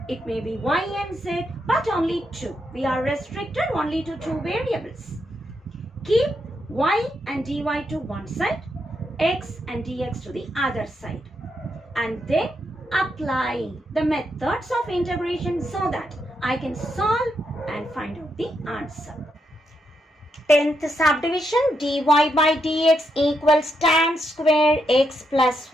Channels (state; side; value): normal; both; correlation 0.81